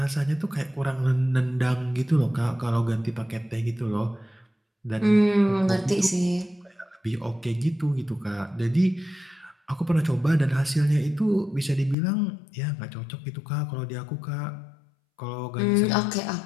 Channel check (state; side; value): drops out; right; at 12.0 s